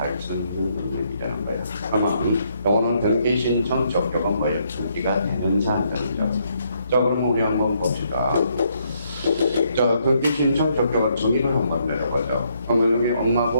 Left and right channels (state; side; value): inverted; both; correlation -0.73